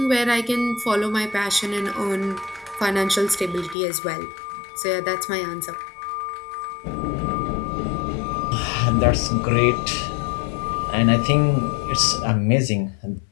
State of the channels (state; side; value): drops out; right; at 3.8 s